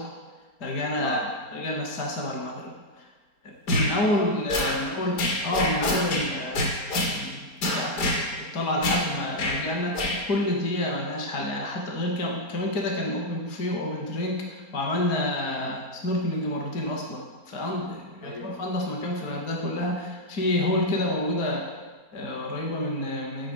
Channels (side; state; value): right; late; 4.3 ms